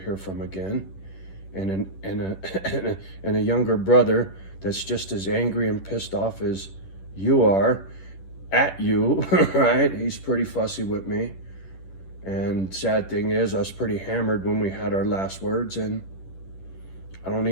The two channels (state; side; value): late; right; 10 ms